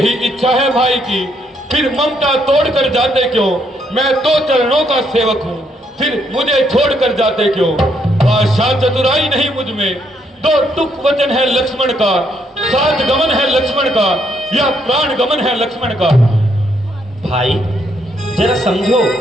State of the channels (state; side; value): normal; both; correlation 0.73